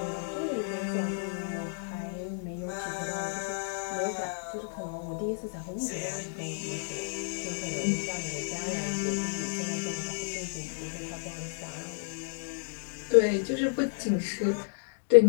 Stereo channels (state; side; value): silent; right; digital silence